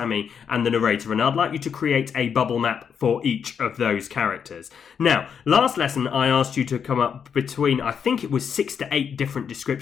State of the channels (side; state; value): right; quieter; 7.2 dB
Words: and the narrator, and I'd like you to create a bubble map for each of those characters. Now, last lesson I asked you to come up between, I think it was 6 to 8 different